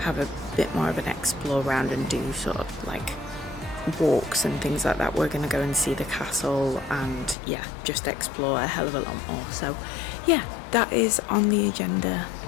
have a bit more of an explore around and do sort of like walks and things like that. We're going to go and see the castle and yeah, just explore a hell of a lot more. So yeah, that is on the agenda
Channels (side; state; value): right; drops out; at 7.4 s